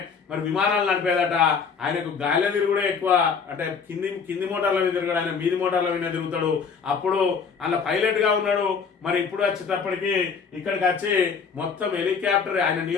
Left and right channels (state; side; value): quieter; right; 5.8 dB